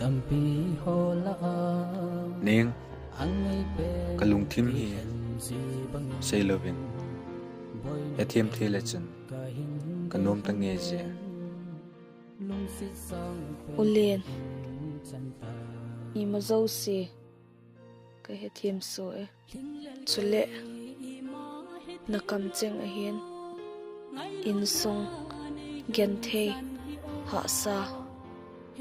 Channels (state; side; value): identical; both; correlation 1.00